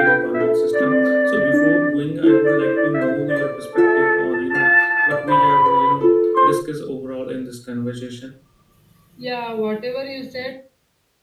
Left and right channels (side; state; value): both; identical; correlation 1.00